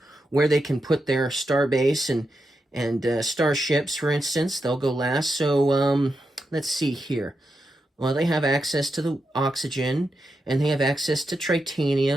where they can put their starbase and starships, for instance. They'll go last. So let's see here. Well, they have access to the oxygen, and they have access to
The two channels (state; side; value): normal; both; correlation 0.86